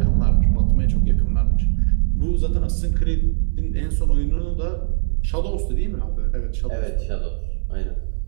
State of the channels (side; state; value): left; silent; 61 dB below the other